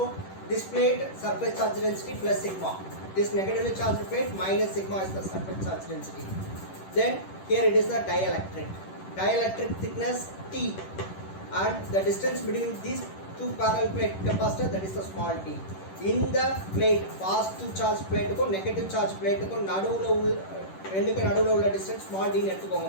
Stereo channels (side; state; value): right; late; 10 ms